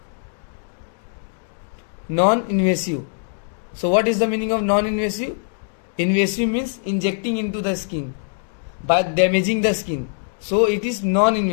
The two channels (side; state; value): right; silent; digital silence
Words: Non-invasive. So what is the meaning of non-invasive? Invasive means injecting into the skin by damaging the skin. So it is